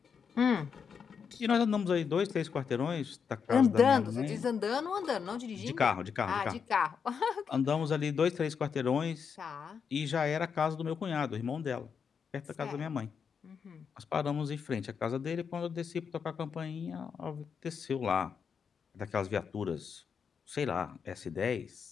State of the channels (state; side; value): quieter; right; 6.5 dB